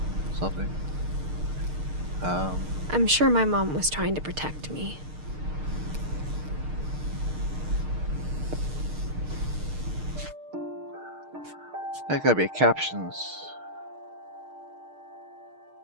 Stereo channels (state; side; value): late; left; 6.5 ms